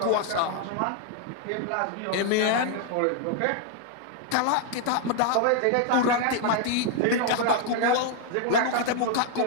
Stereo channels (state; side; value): different; both; correlation 0.00